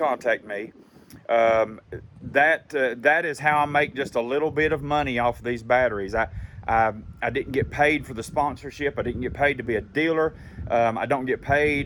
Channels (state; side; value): identical; both; correlation 1.00